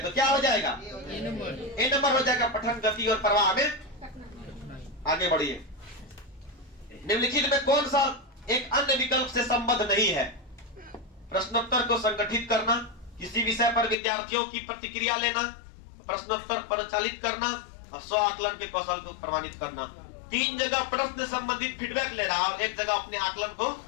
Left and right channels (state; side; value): drops out; right; at 14.0 s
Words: तो क्या हो जाएगा? ए नंबर हो जाएगा, पठन गति और प्रवाह में। आगे बढ़िए। निम्नलिखित में कौन सा एक अन्य विकल्प से संबद्ध नहीं है? प्रश्नोत्तर को संगठित करना, किसी विषय पर विद्यार्थियों की प्रतिक्रिया लेना, प्रश्नोत्तर परिचालित करना और स्व आकलन के कौशल को प्रमाणित करना। 3 जगह प्रश्न संबंधित फीडबैक ले रहा है और 1 जगह अपने आकलन को